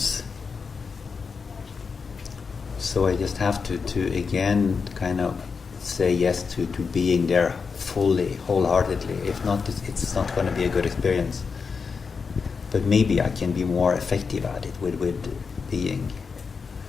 So I just have to again kind of say yes to being there fully, wholeheartedly. If not, it's not going to be a good experience. But maybe I can be more effective at it with being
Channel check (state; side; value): quieter; right; 5.3 dB